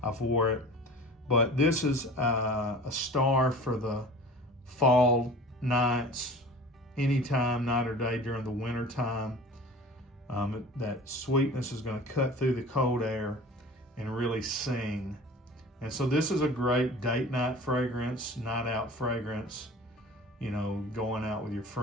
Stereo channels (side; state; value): both; normal; correlation 0.41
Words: I've wore it. But this is a star for the fall nights, anytime, night or day during the winter time. That sweetness is going to cut through the cold air and really sing. And so this is a great date night fragrance, night out fragrance, going out with your